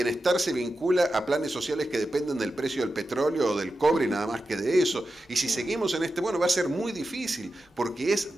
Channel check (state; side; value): normal; both; correlation 0.91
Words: se vincula a planes sociales que dependen del precio del petróleo o del cobre y nada más que de eso, y si seguimos en bueno, va a ser muy difícil, porque es